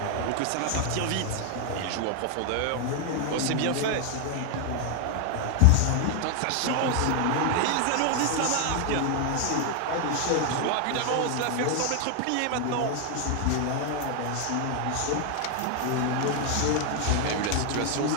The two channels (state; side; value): different; both; correlation 0.00